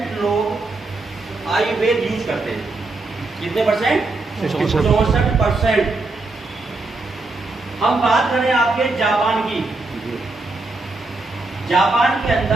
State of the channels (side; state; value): left; quieter; 3.3 dB